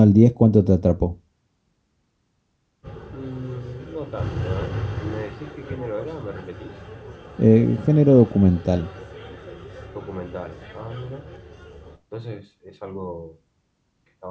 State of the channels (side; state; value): both; identical; correlation 1.00